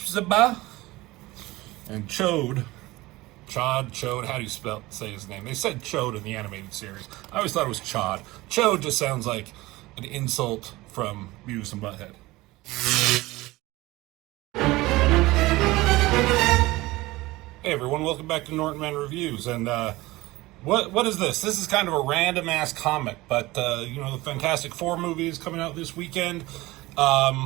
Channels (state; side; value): quieter; left; 19.7 dB